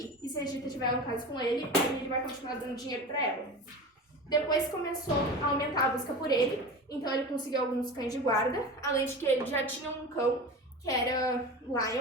E se a Gita tiver um caso com ele, aí ele vai continuar dando dinheiro pra ela. Depois começou a aumentar a busca por ele. Então ele conseguiu alguns cães de guarda. Além de que ele já tinha um cão, que era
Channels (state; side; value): normal; both; correlation 0.31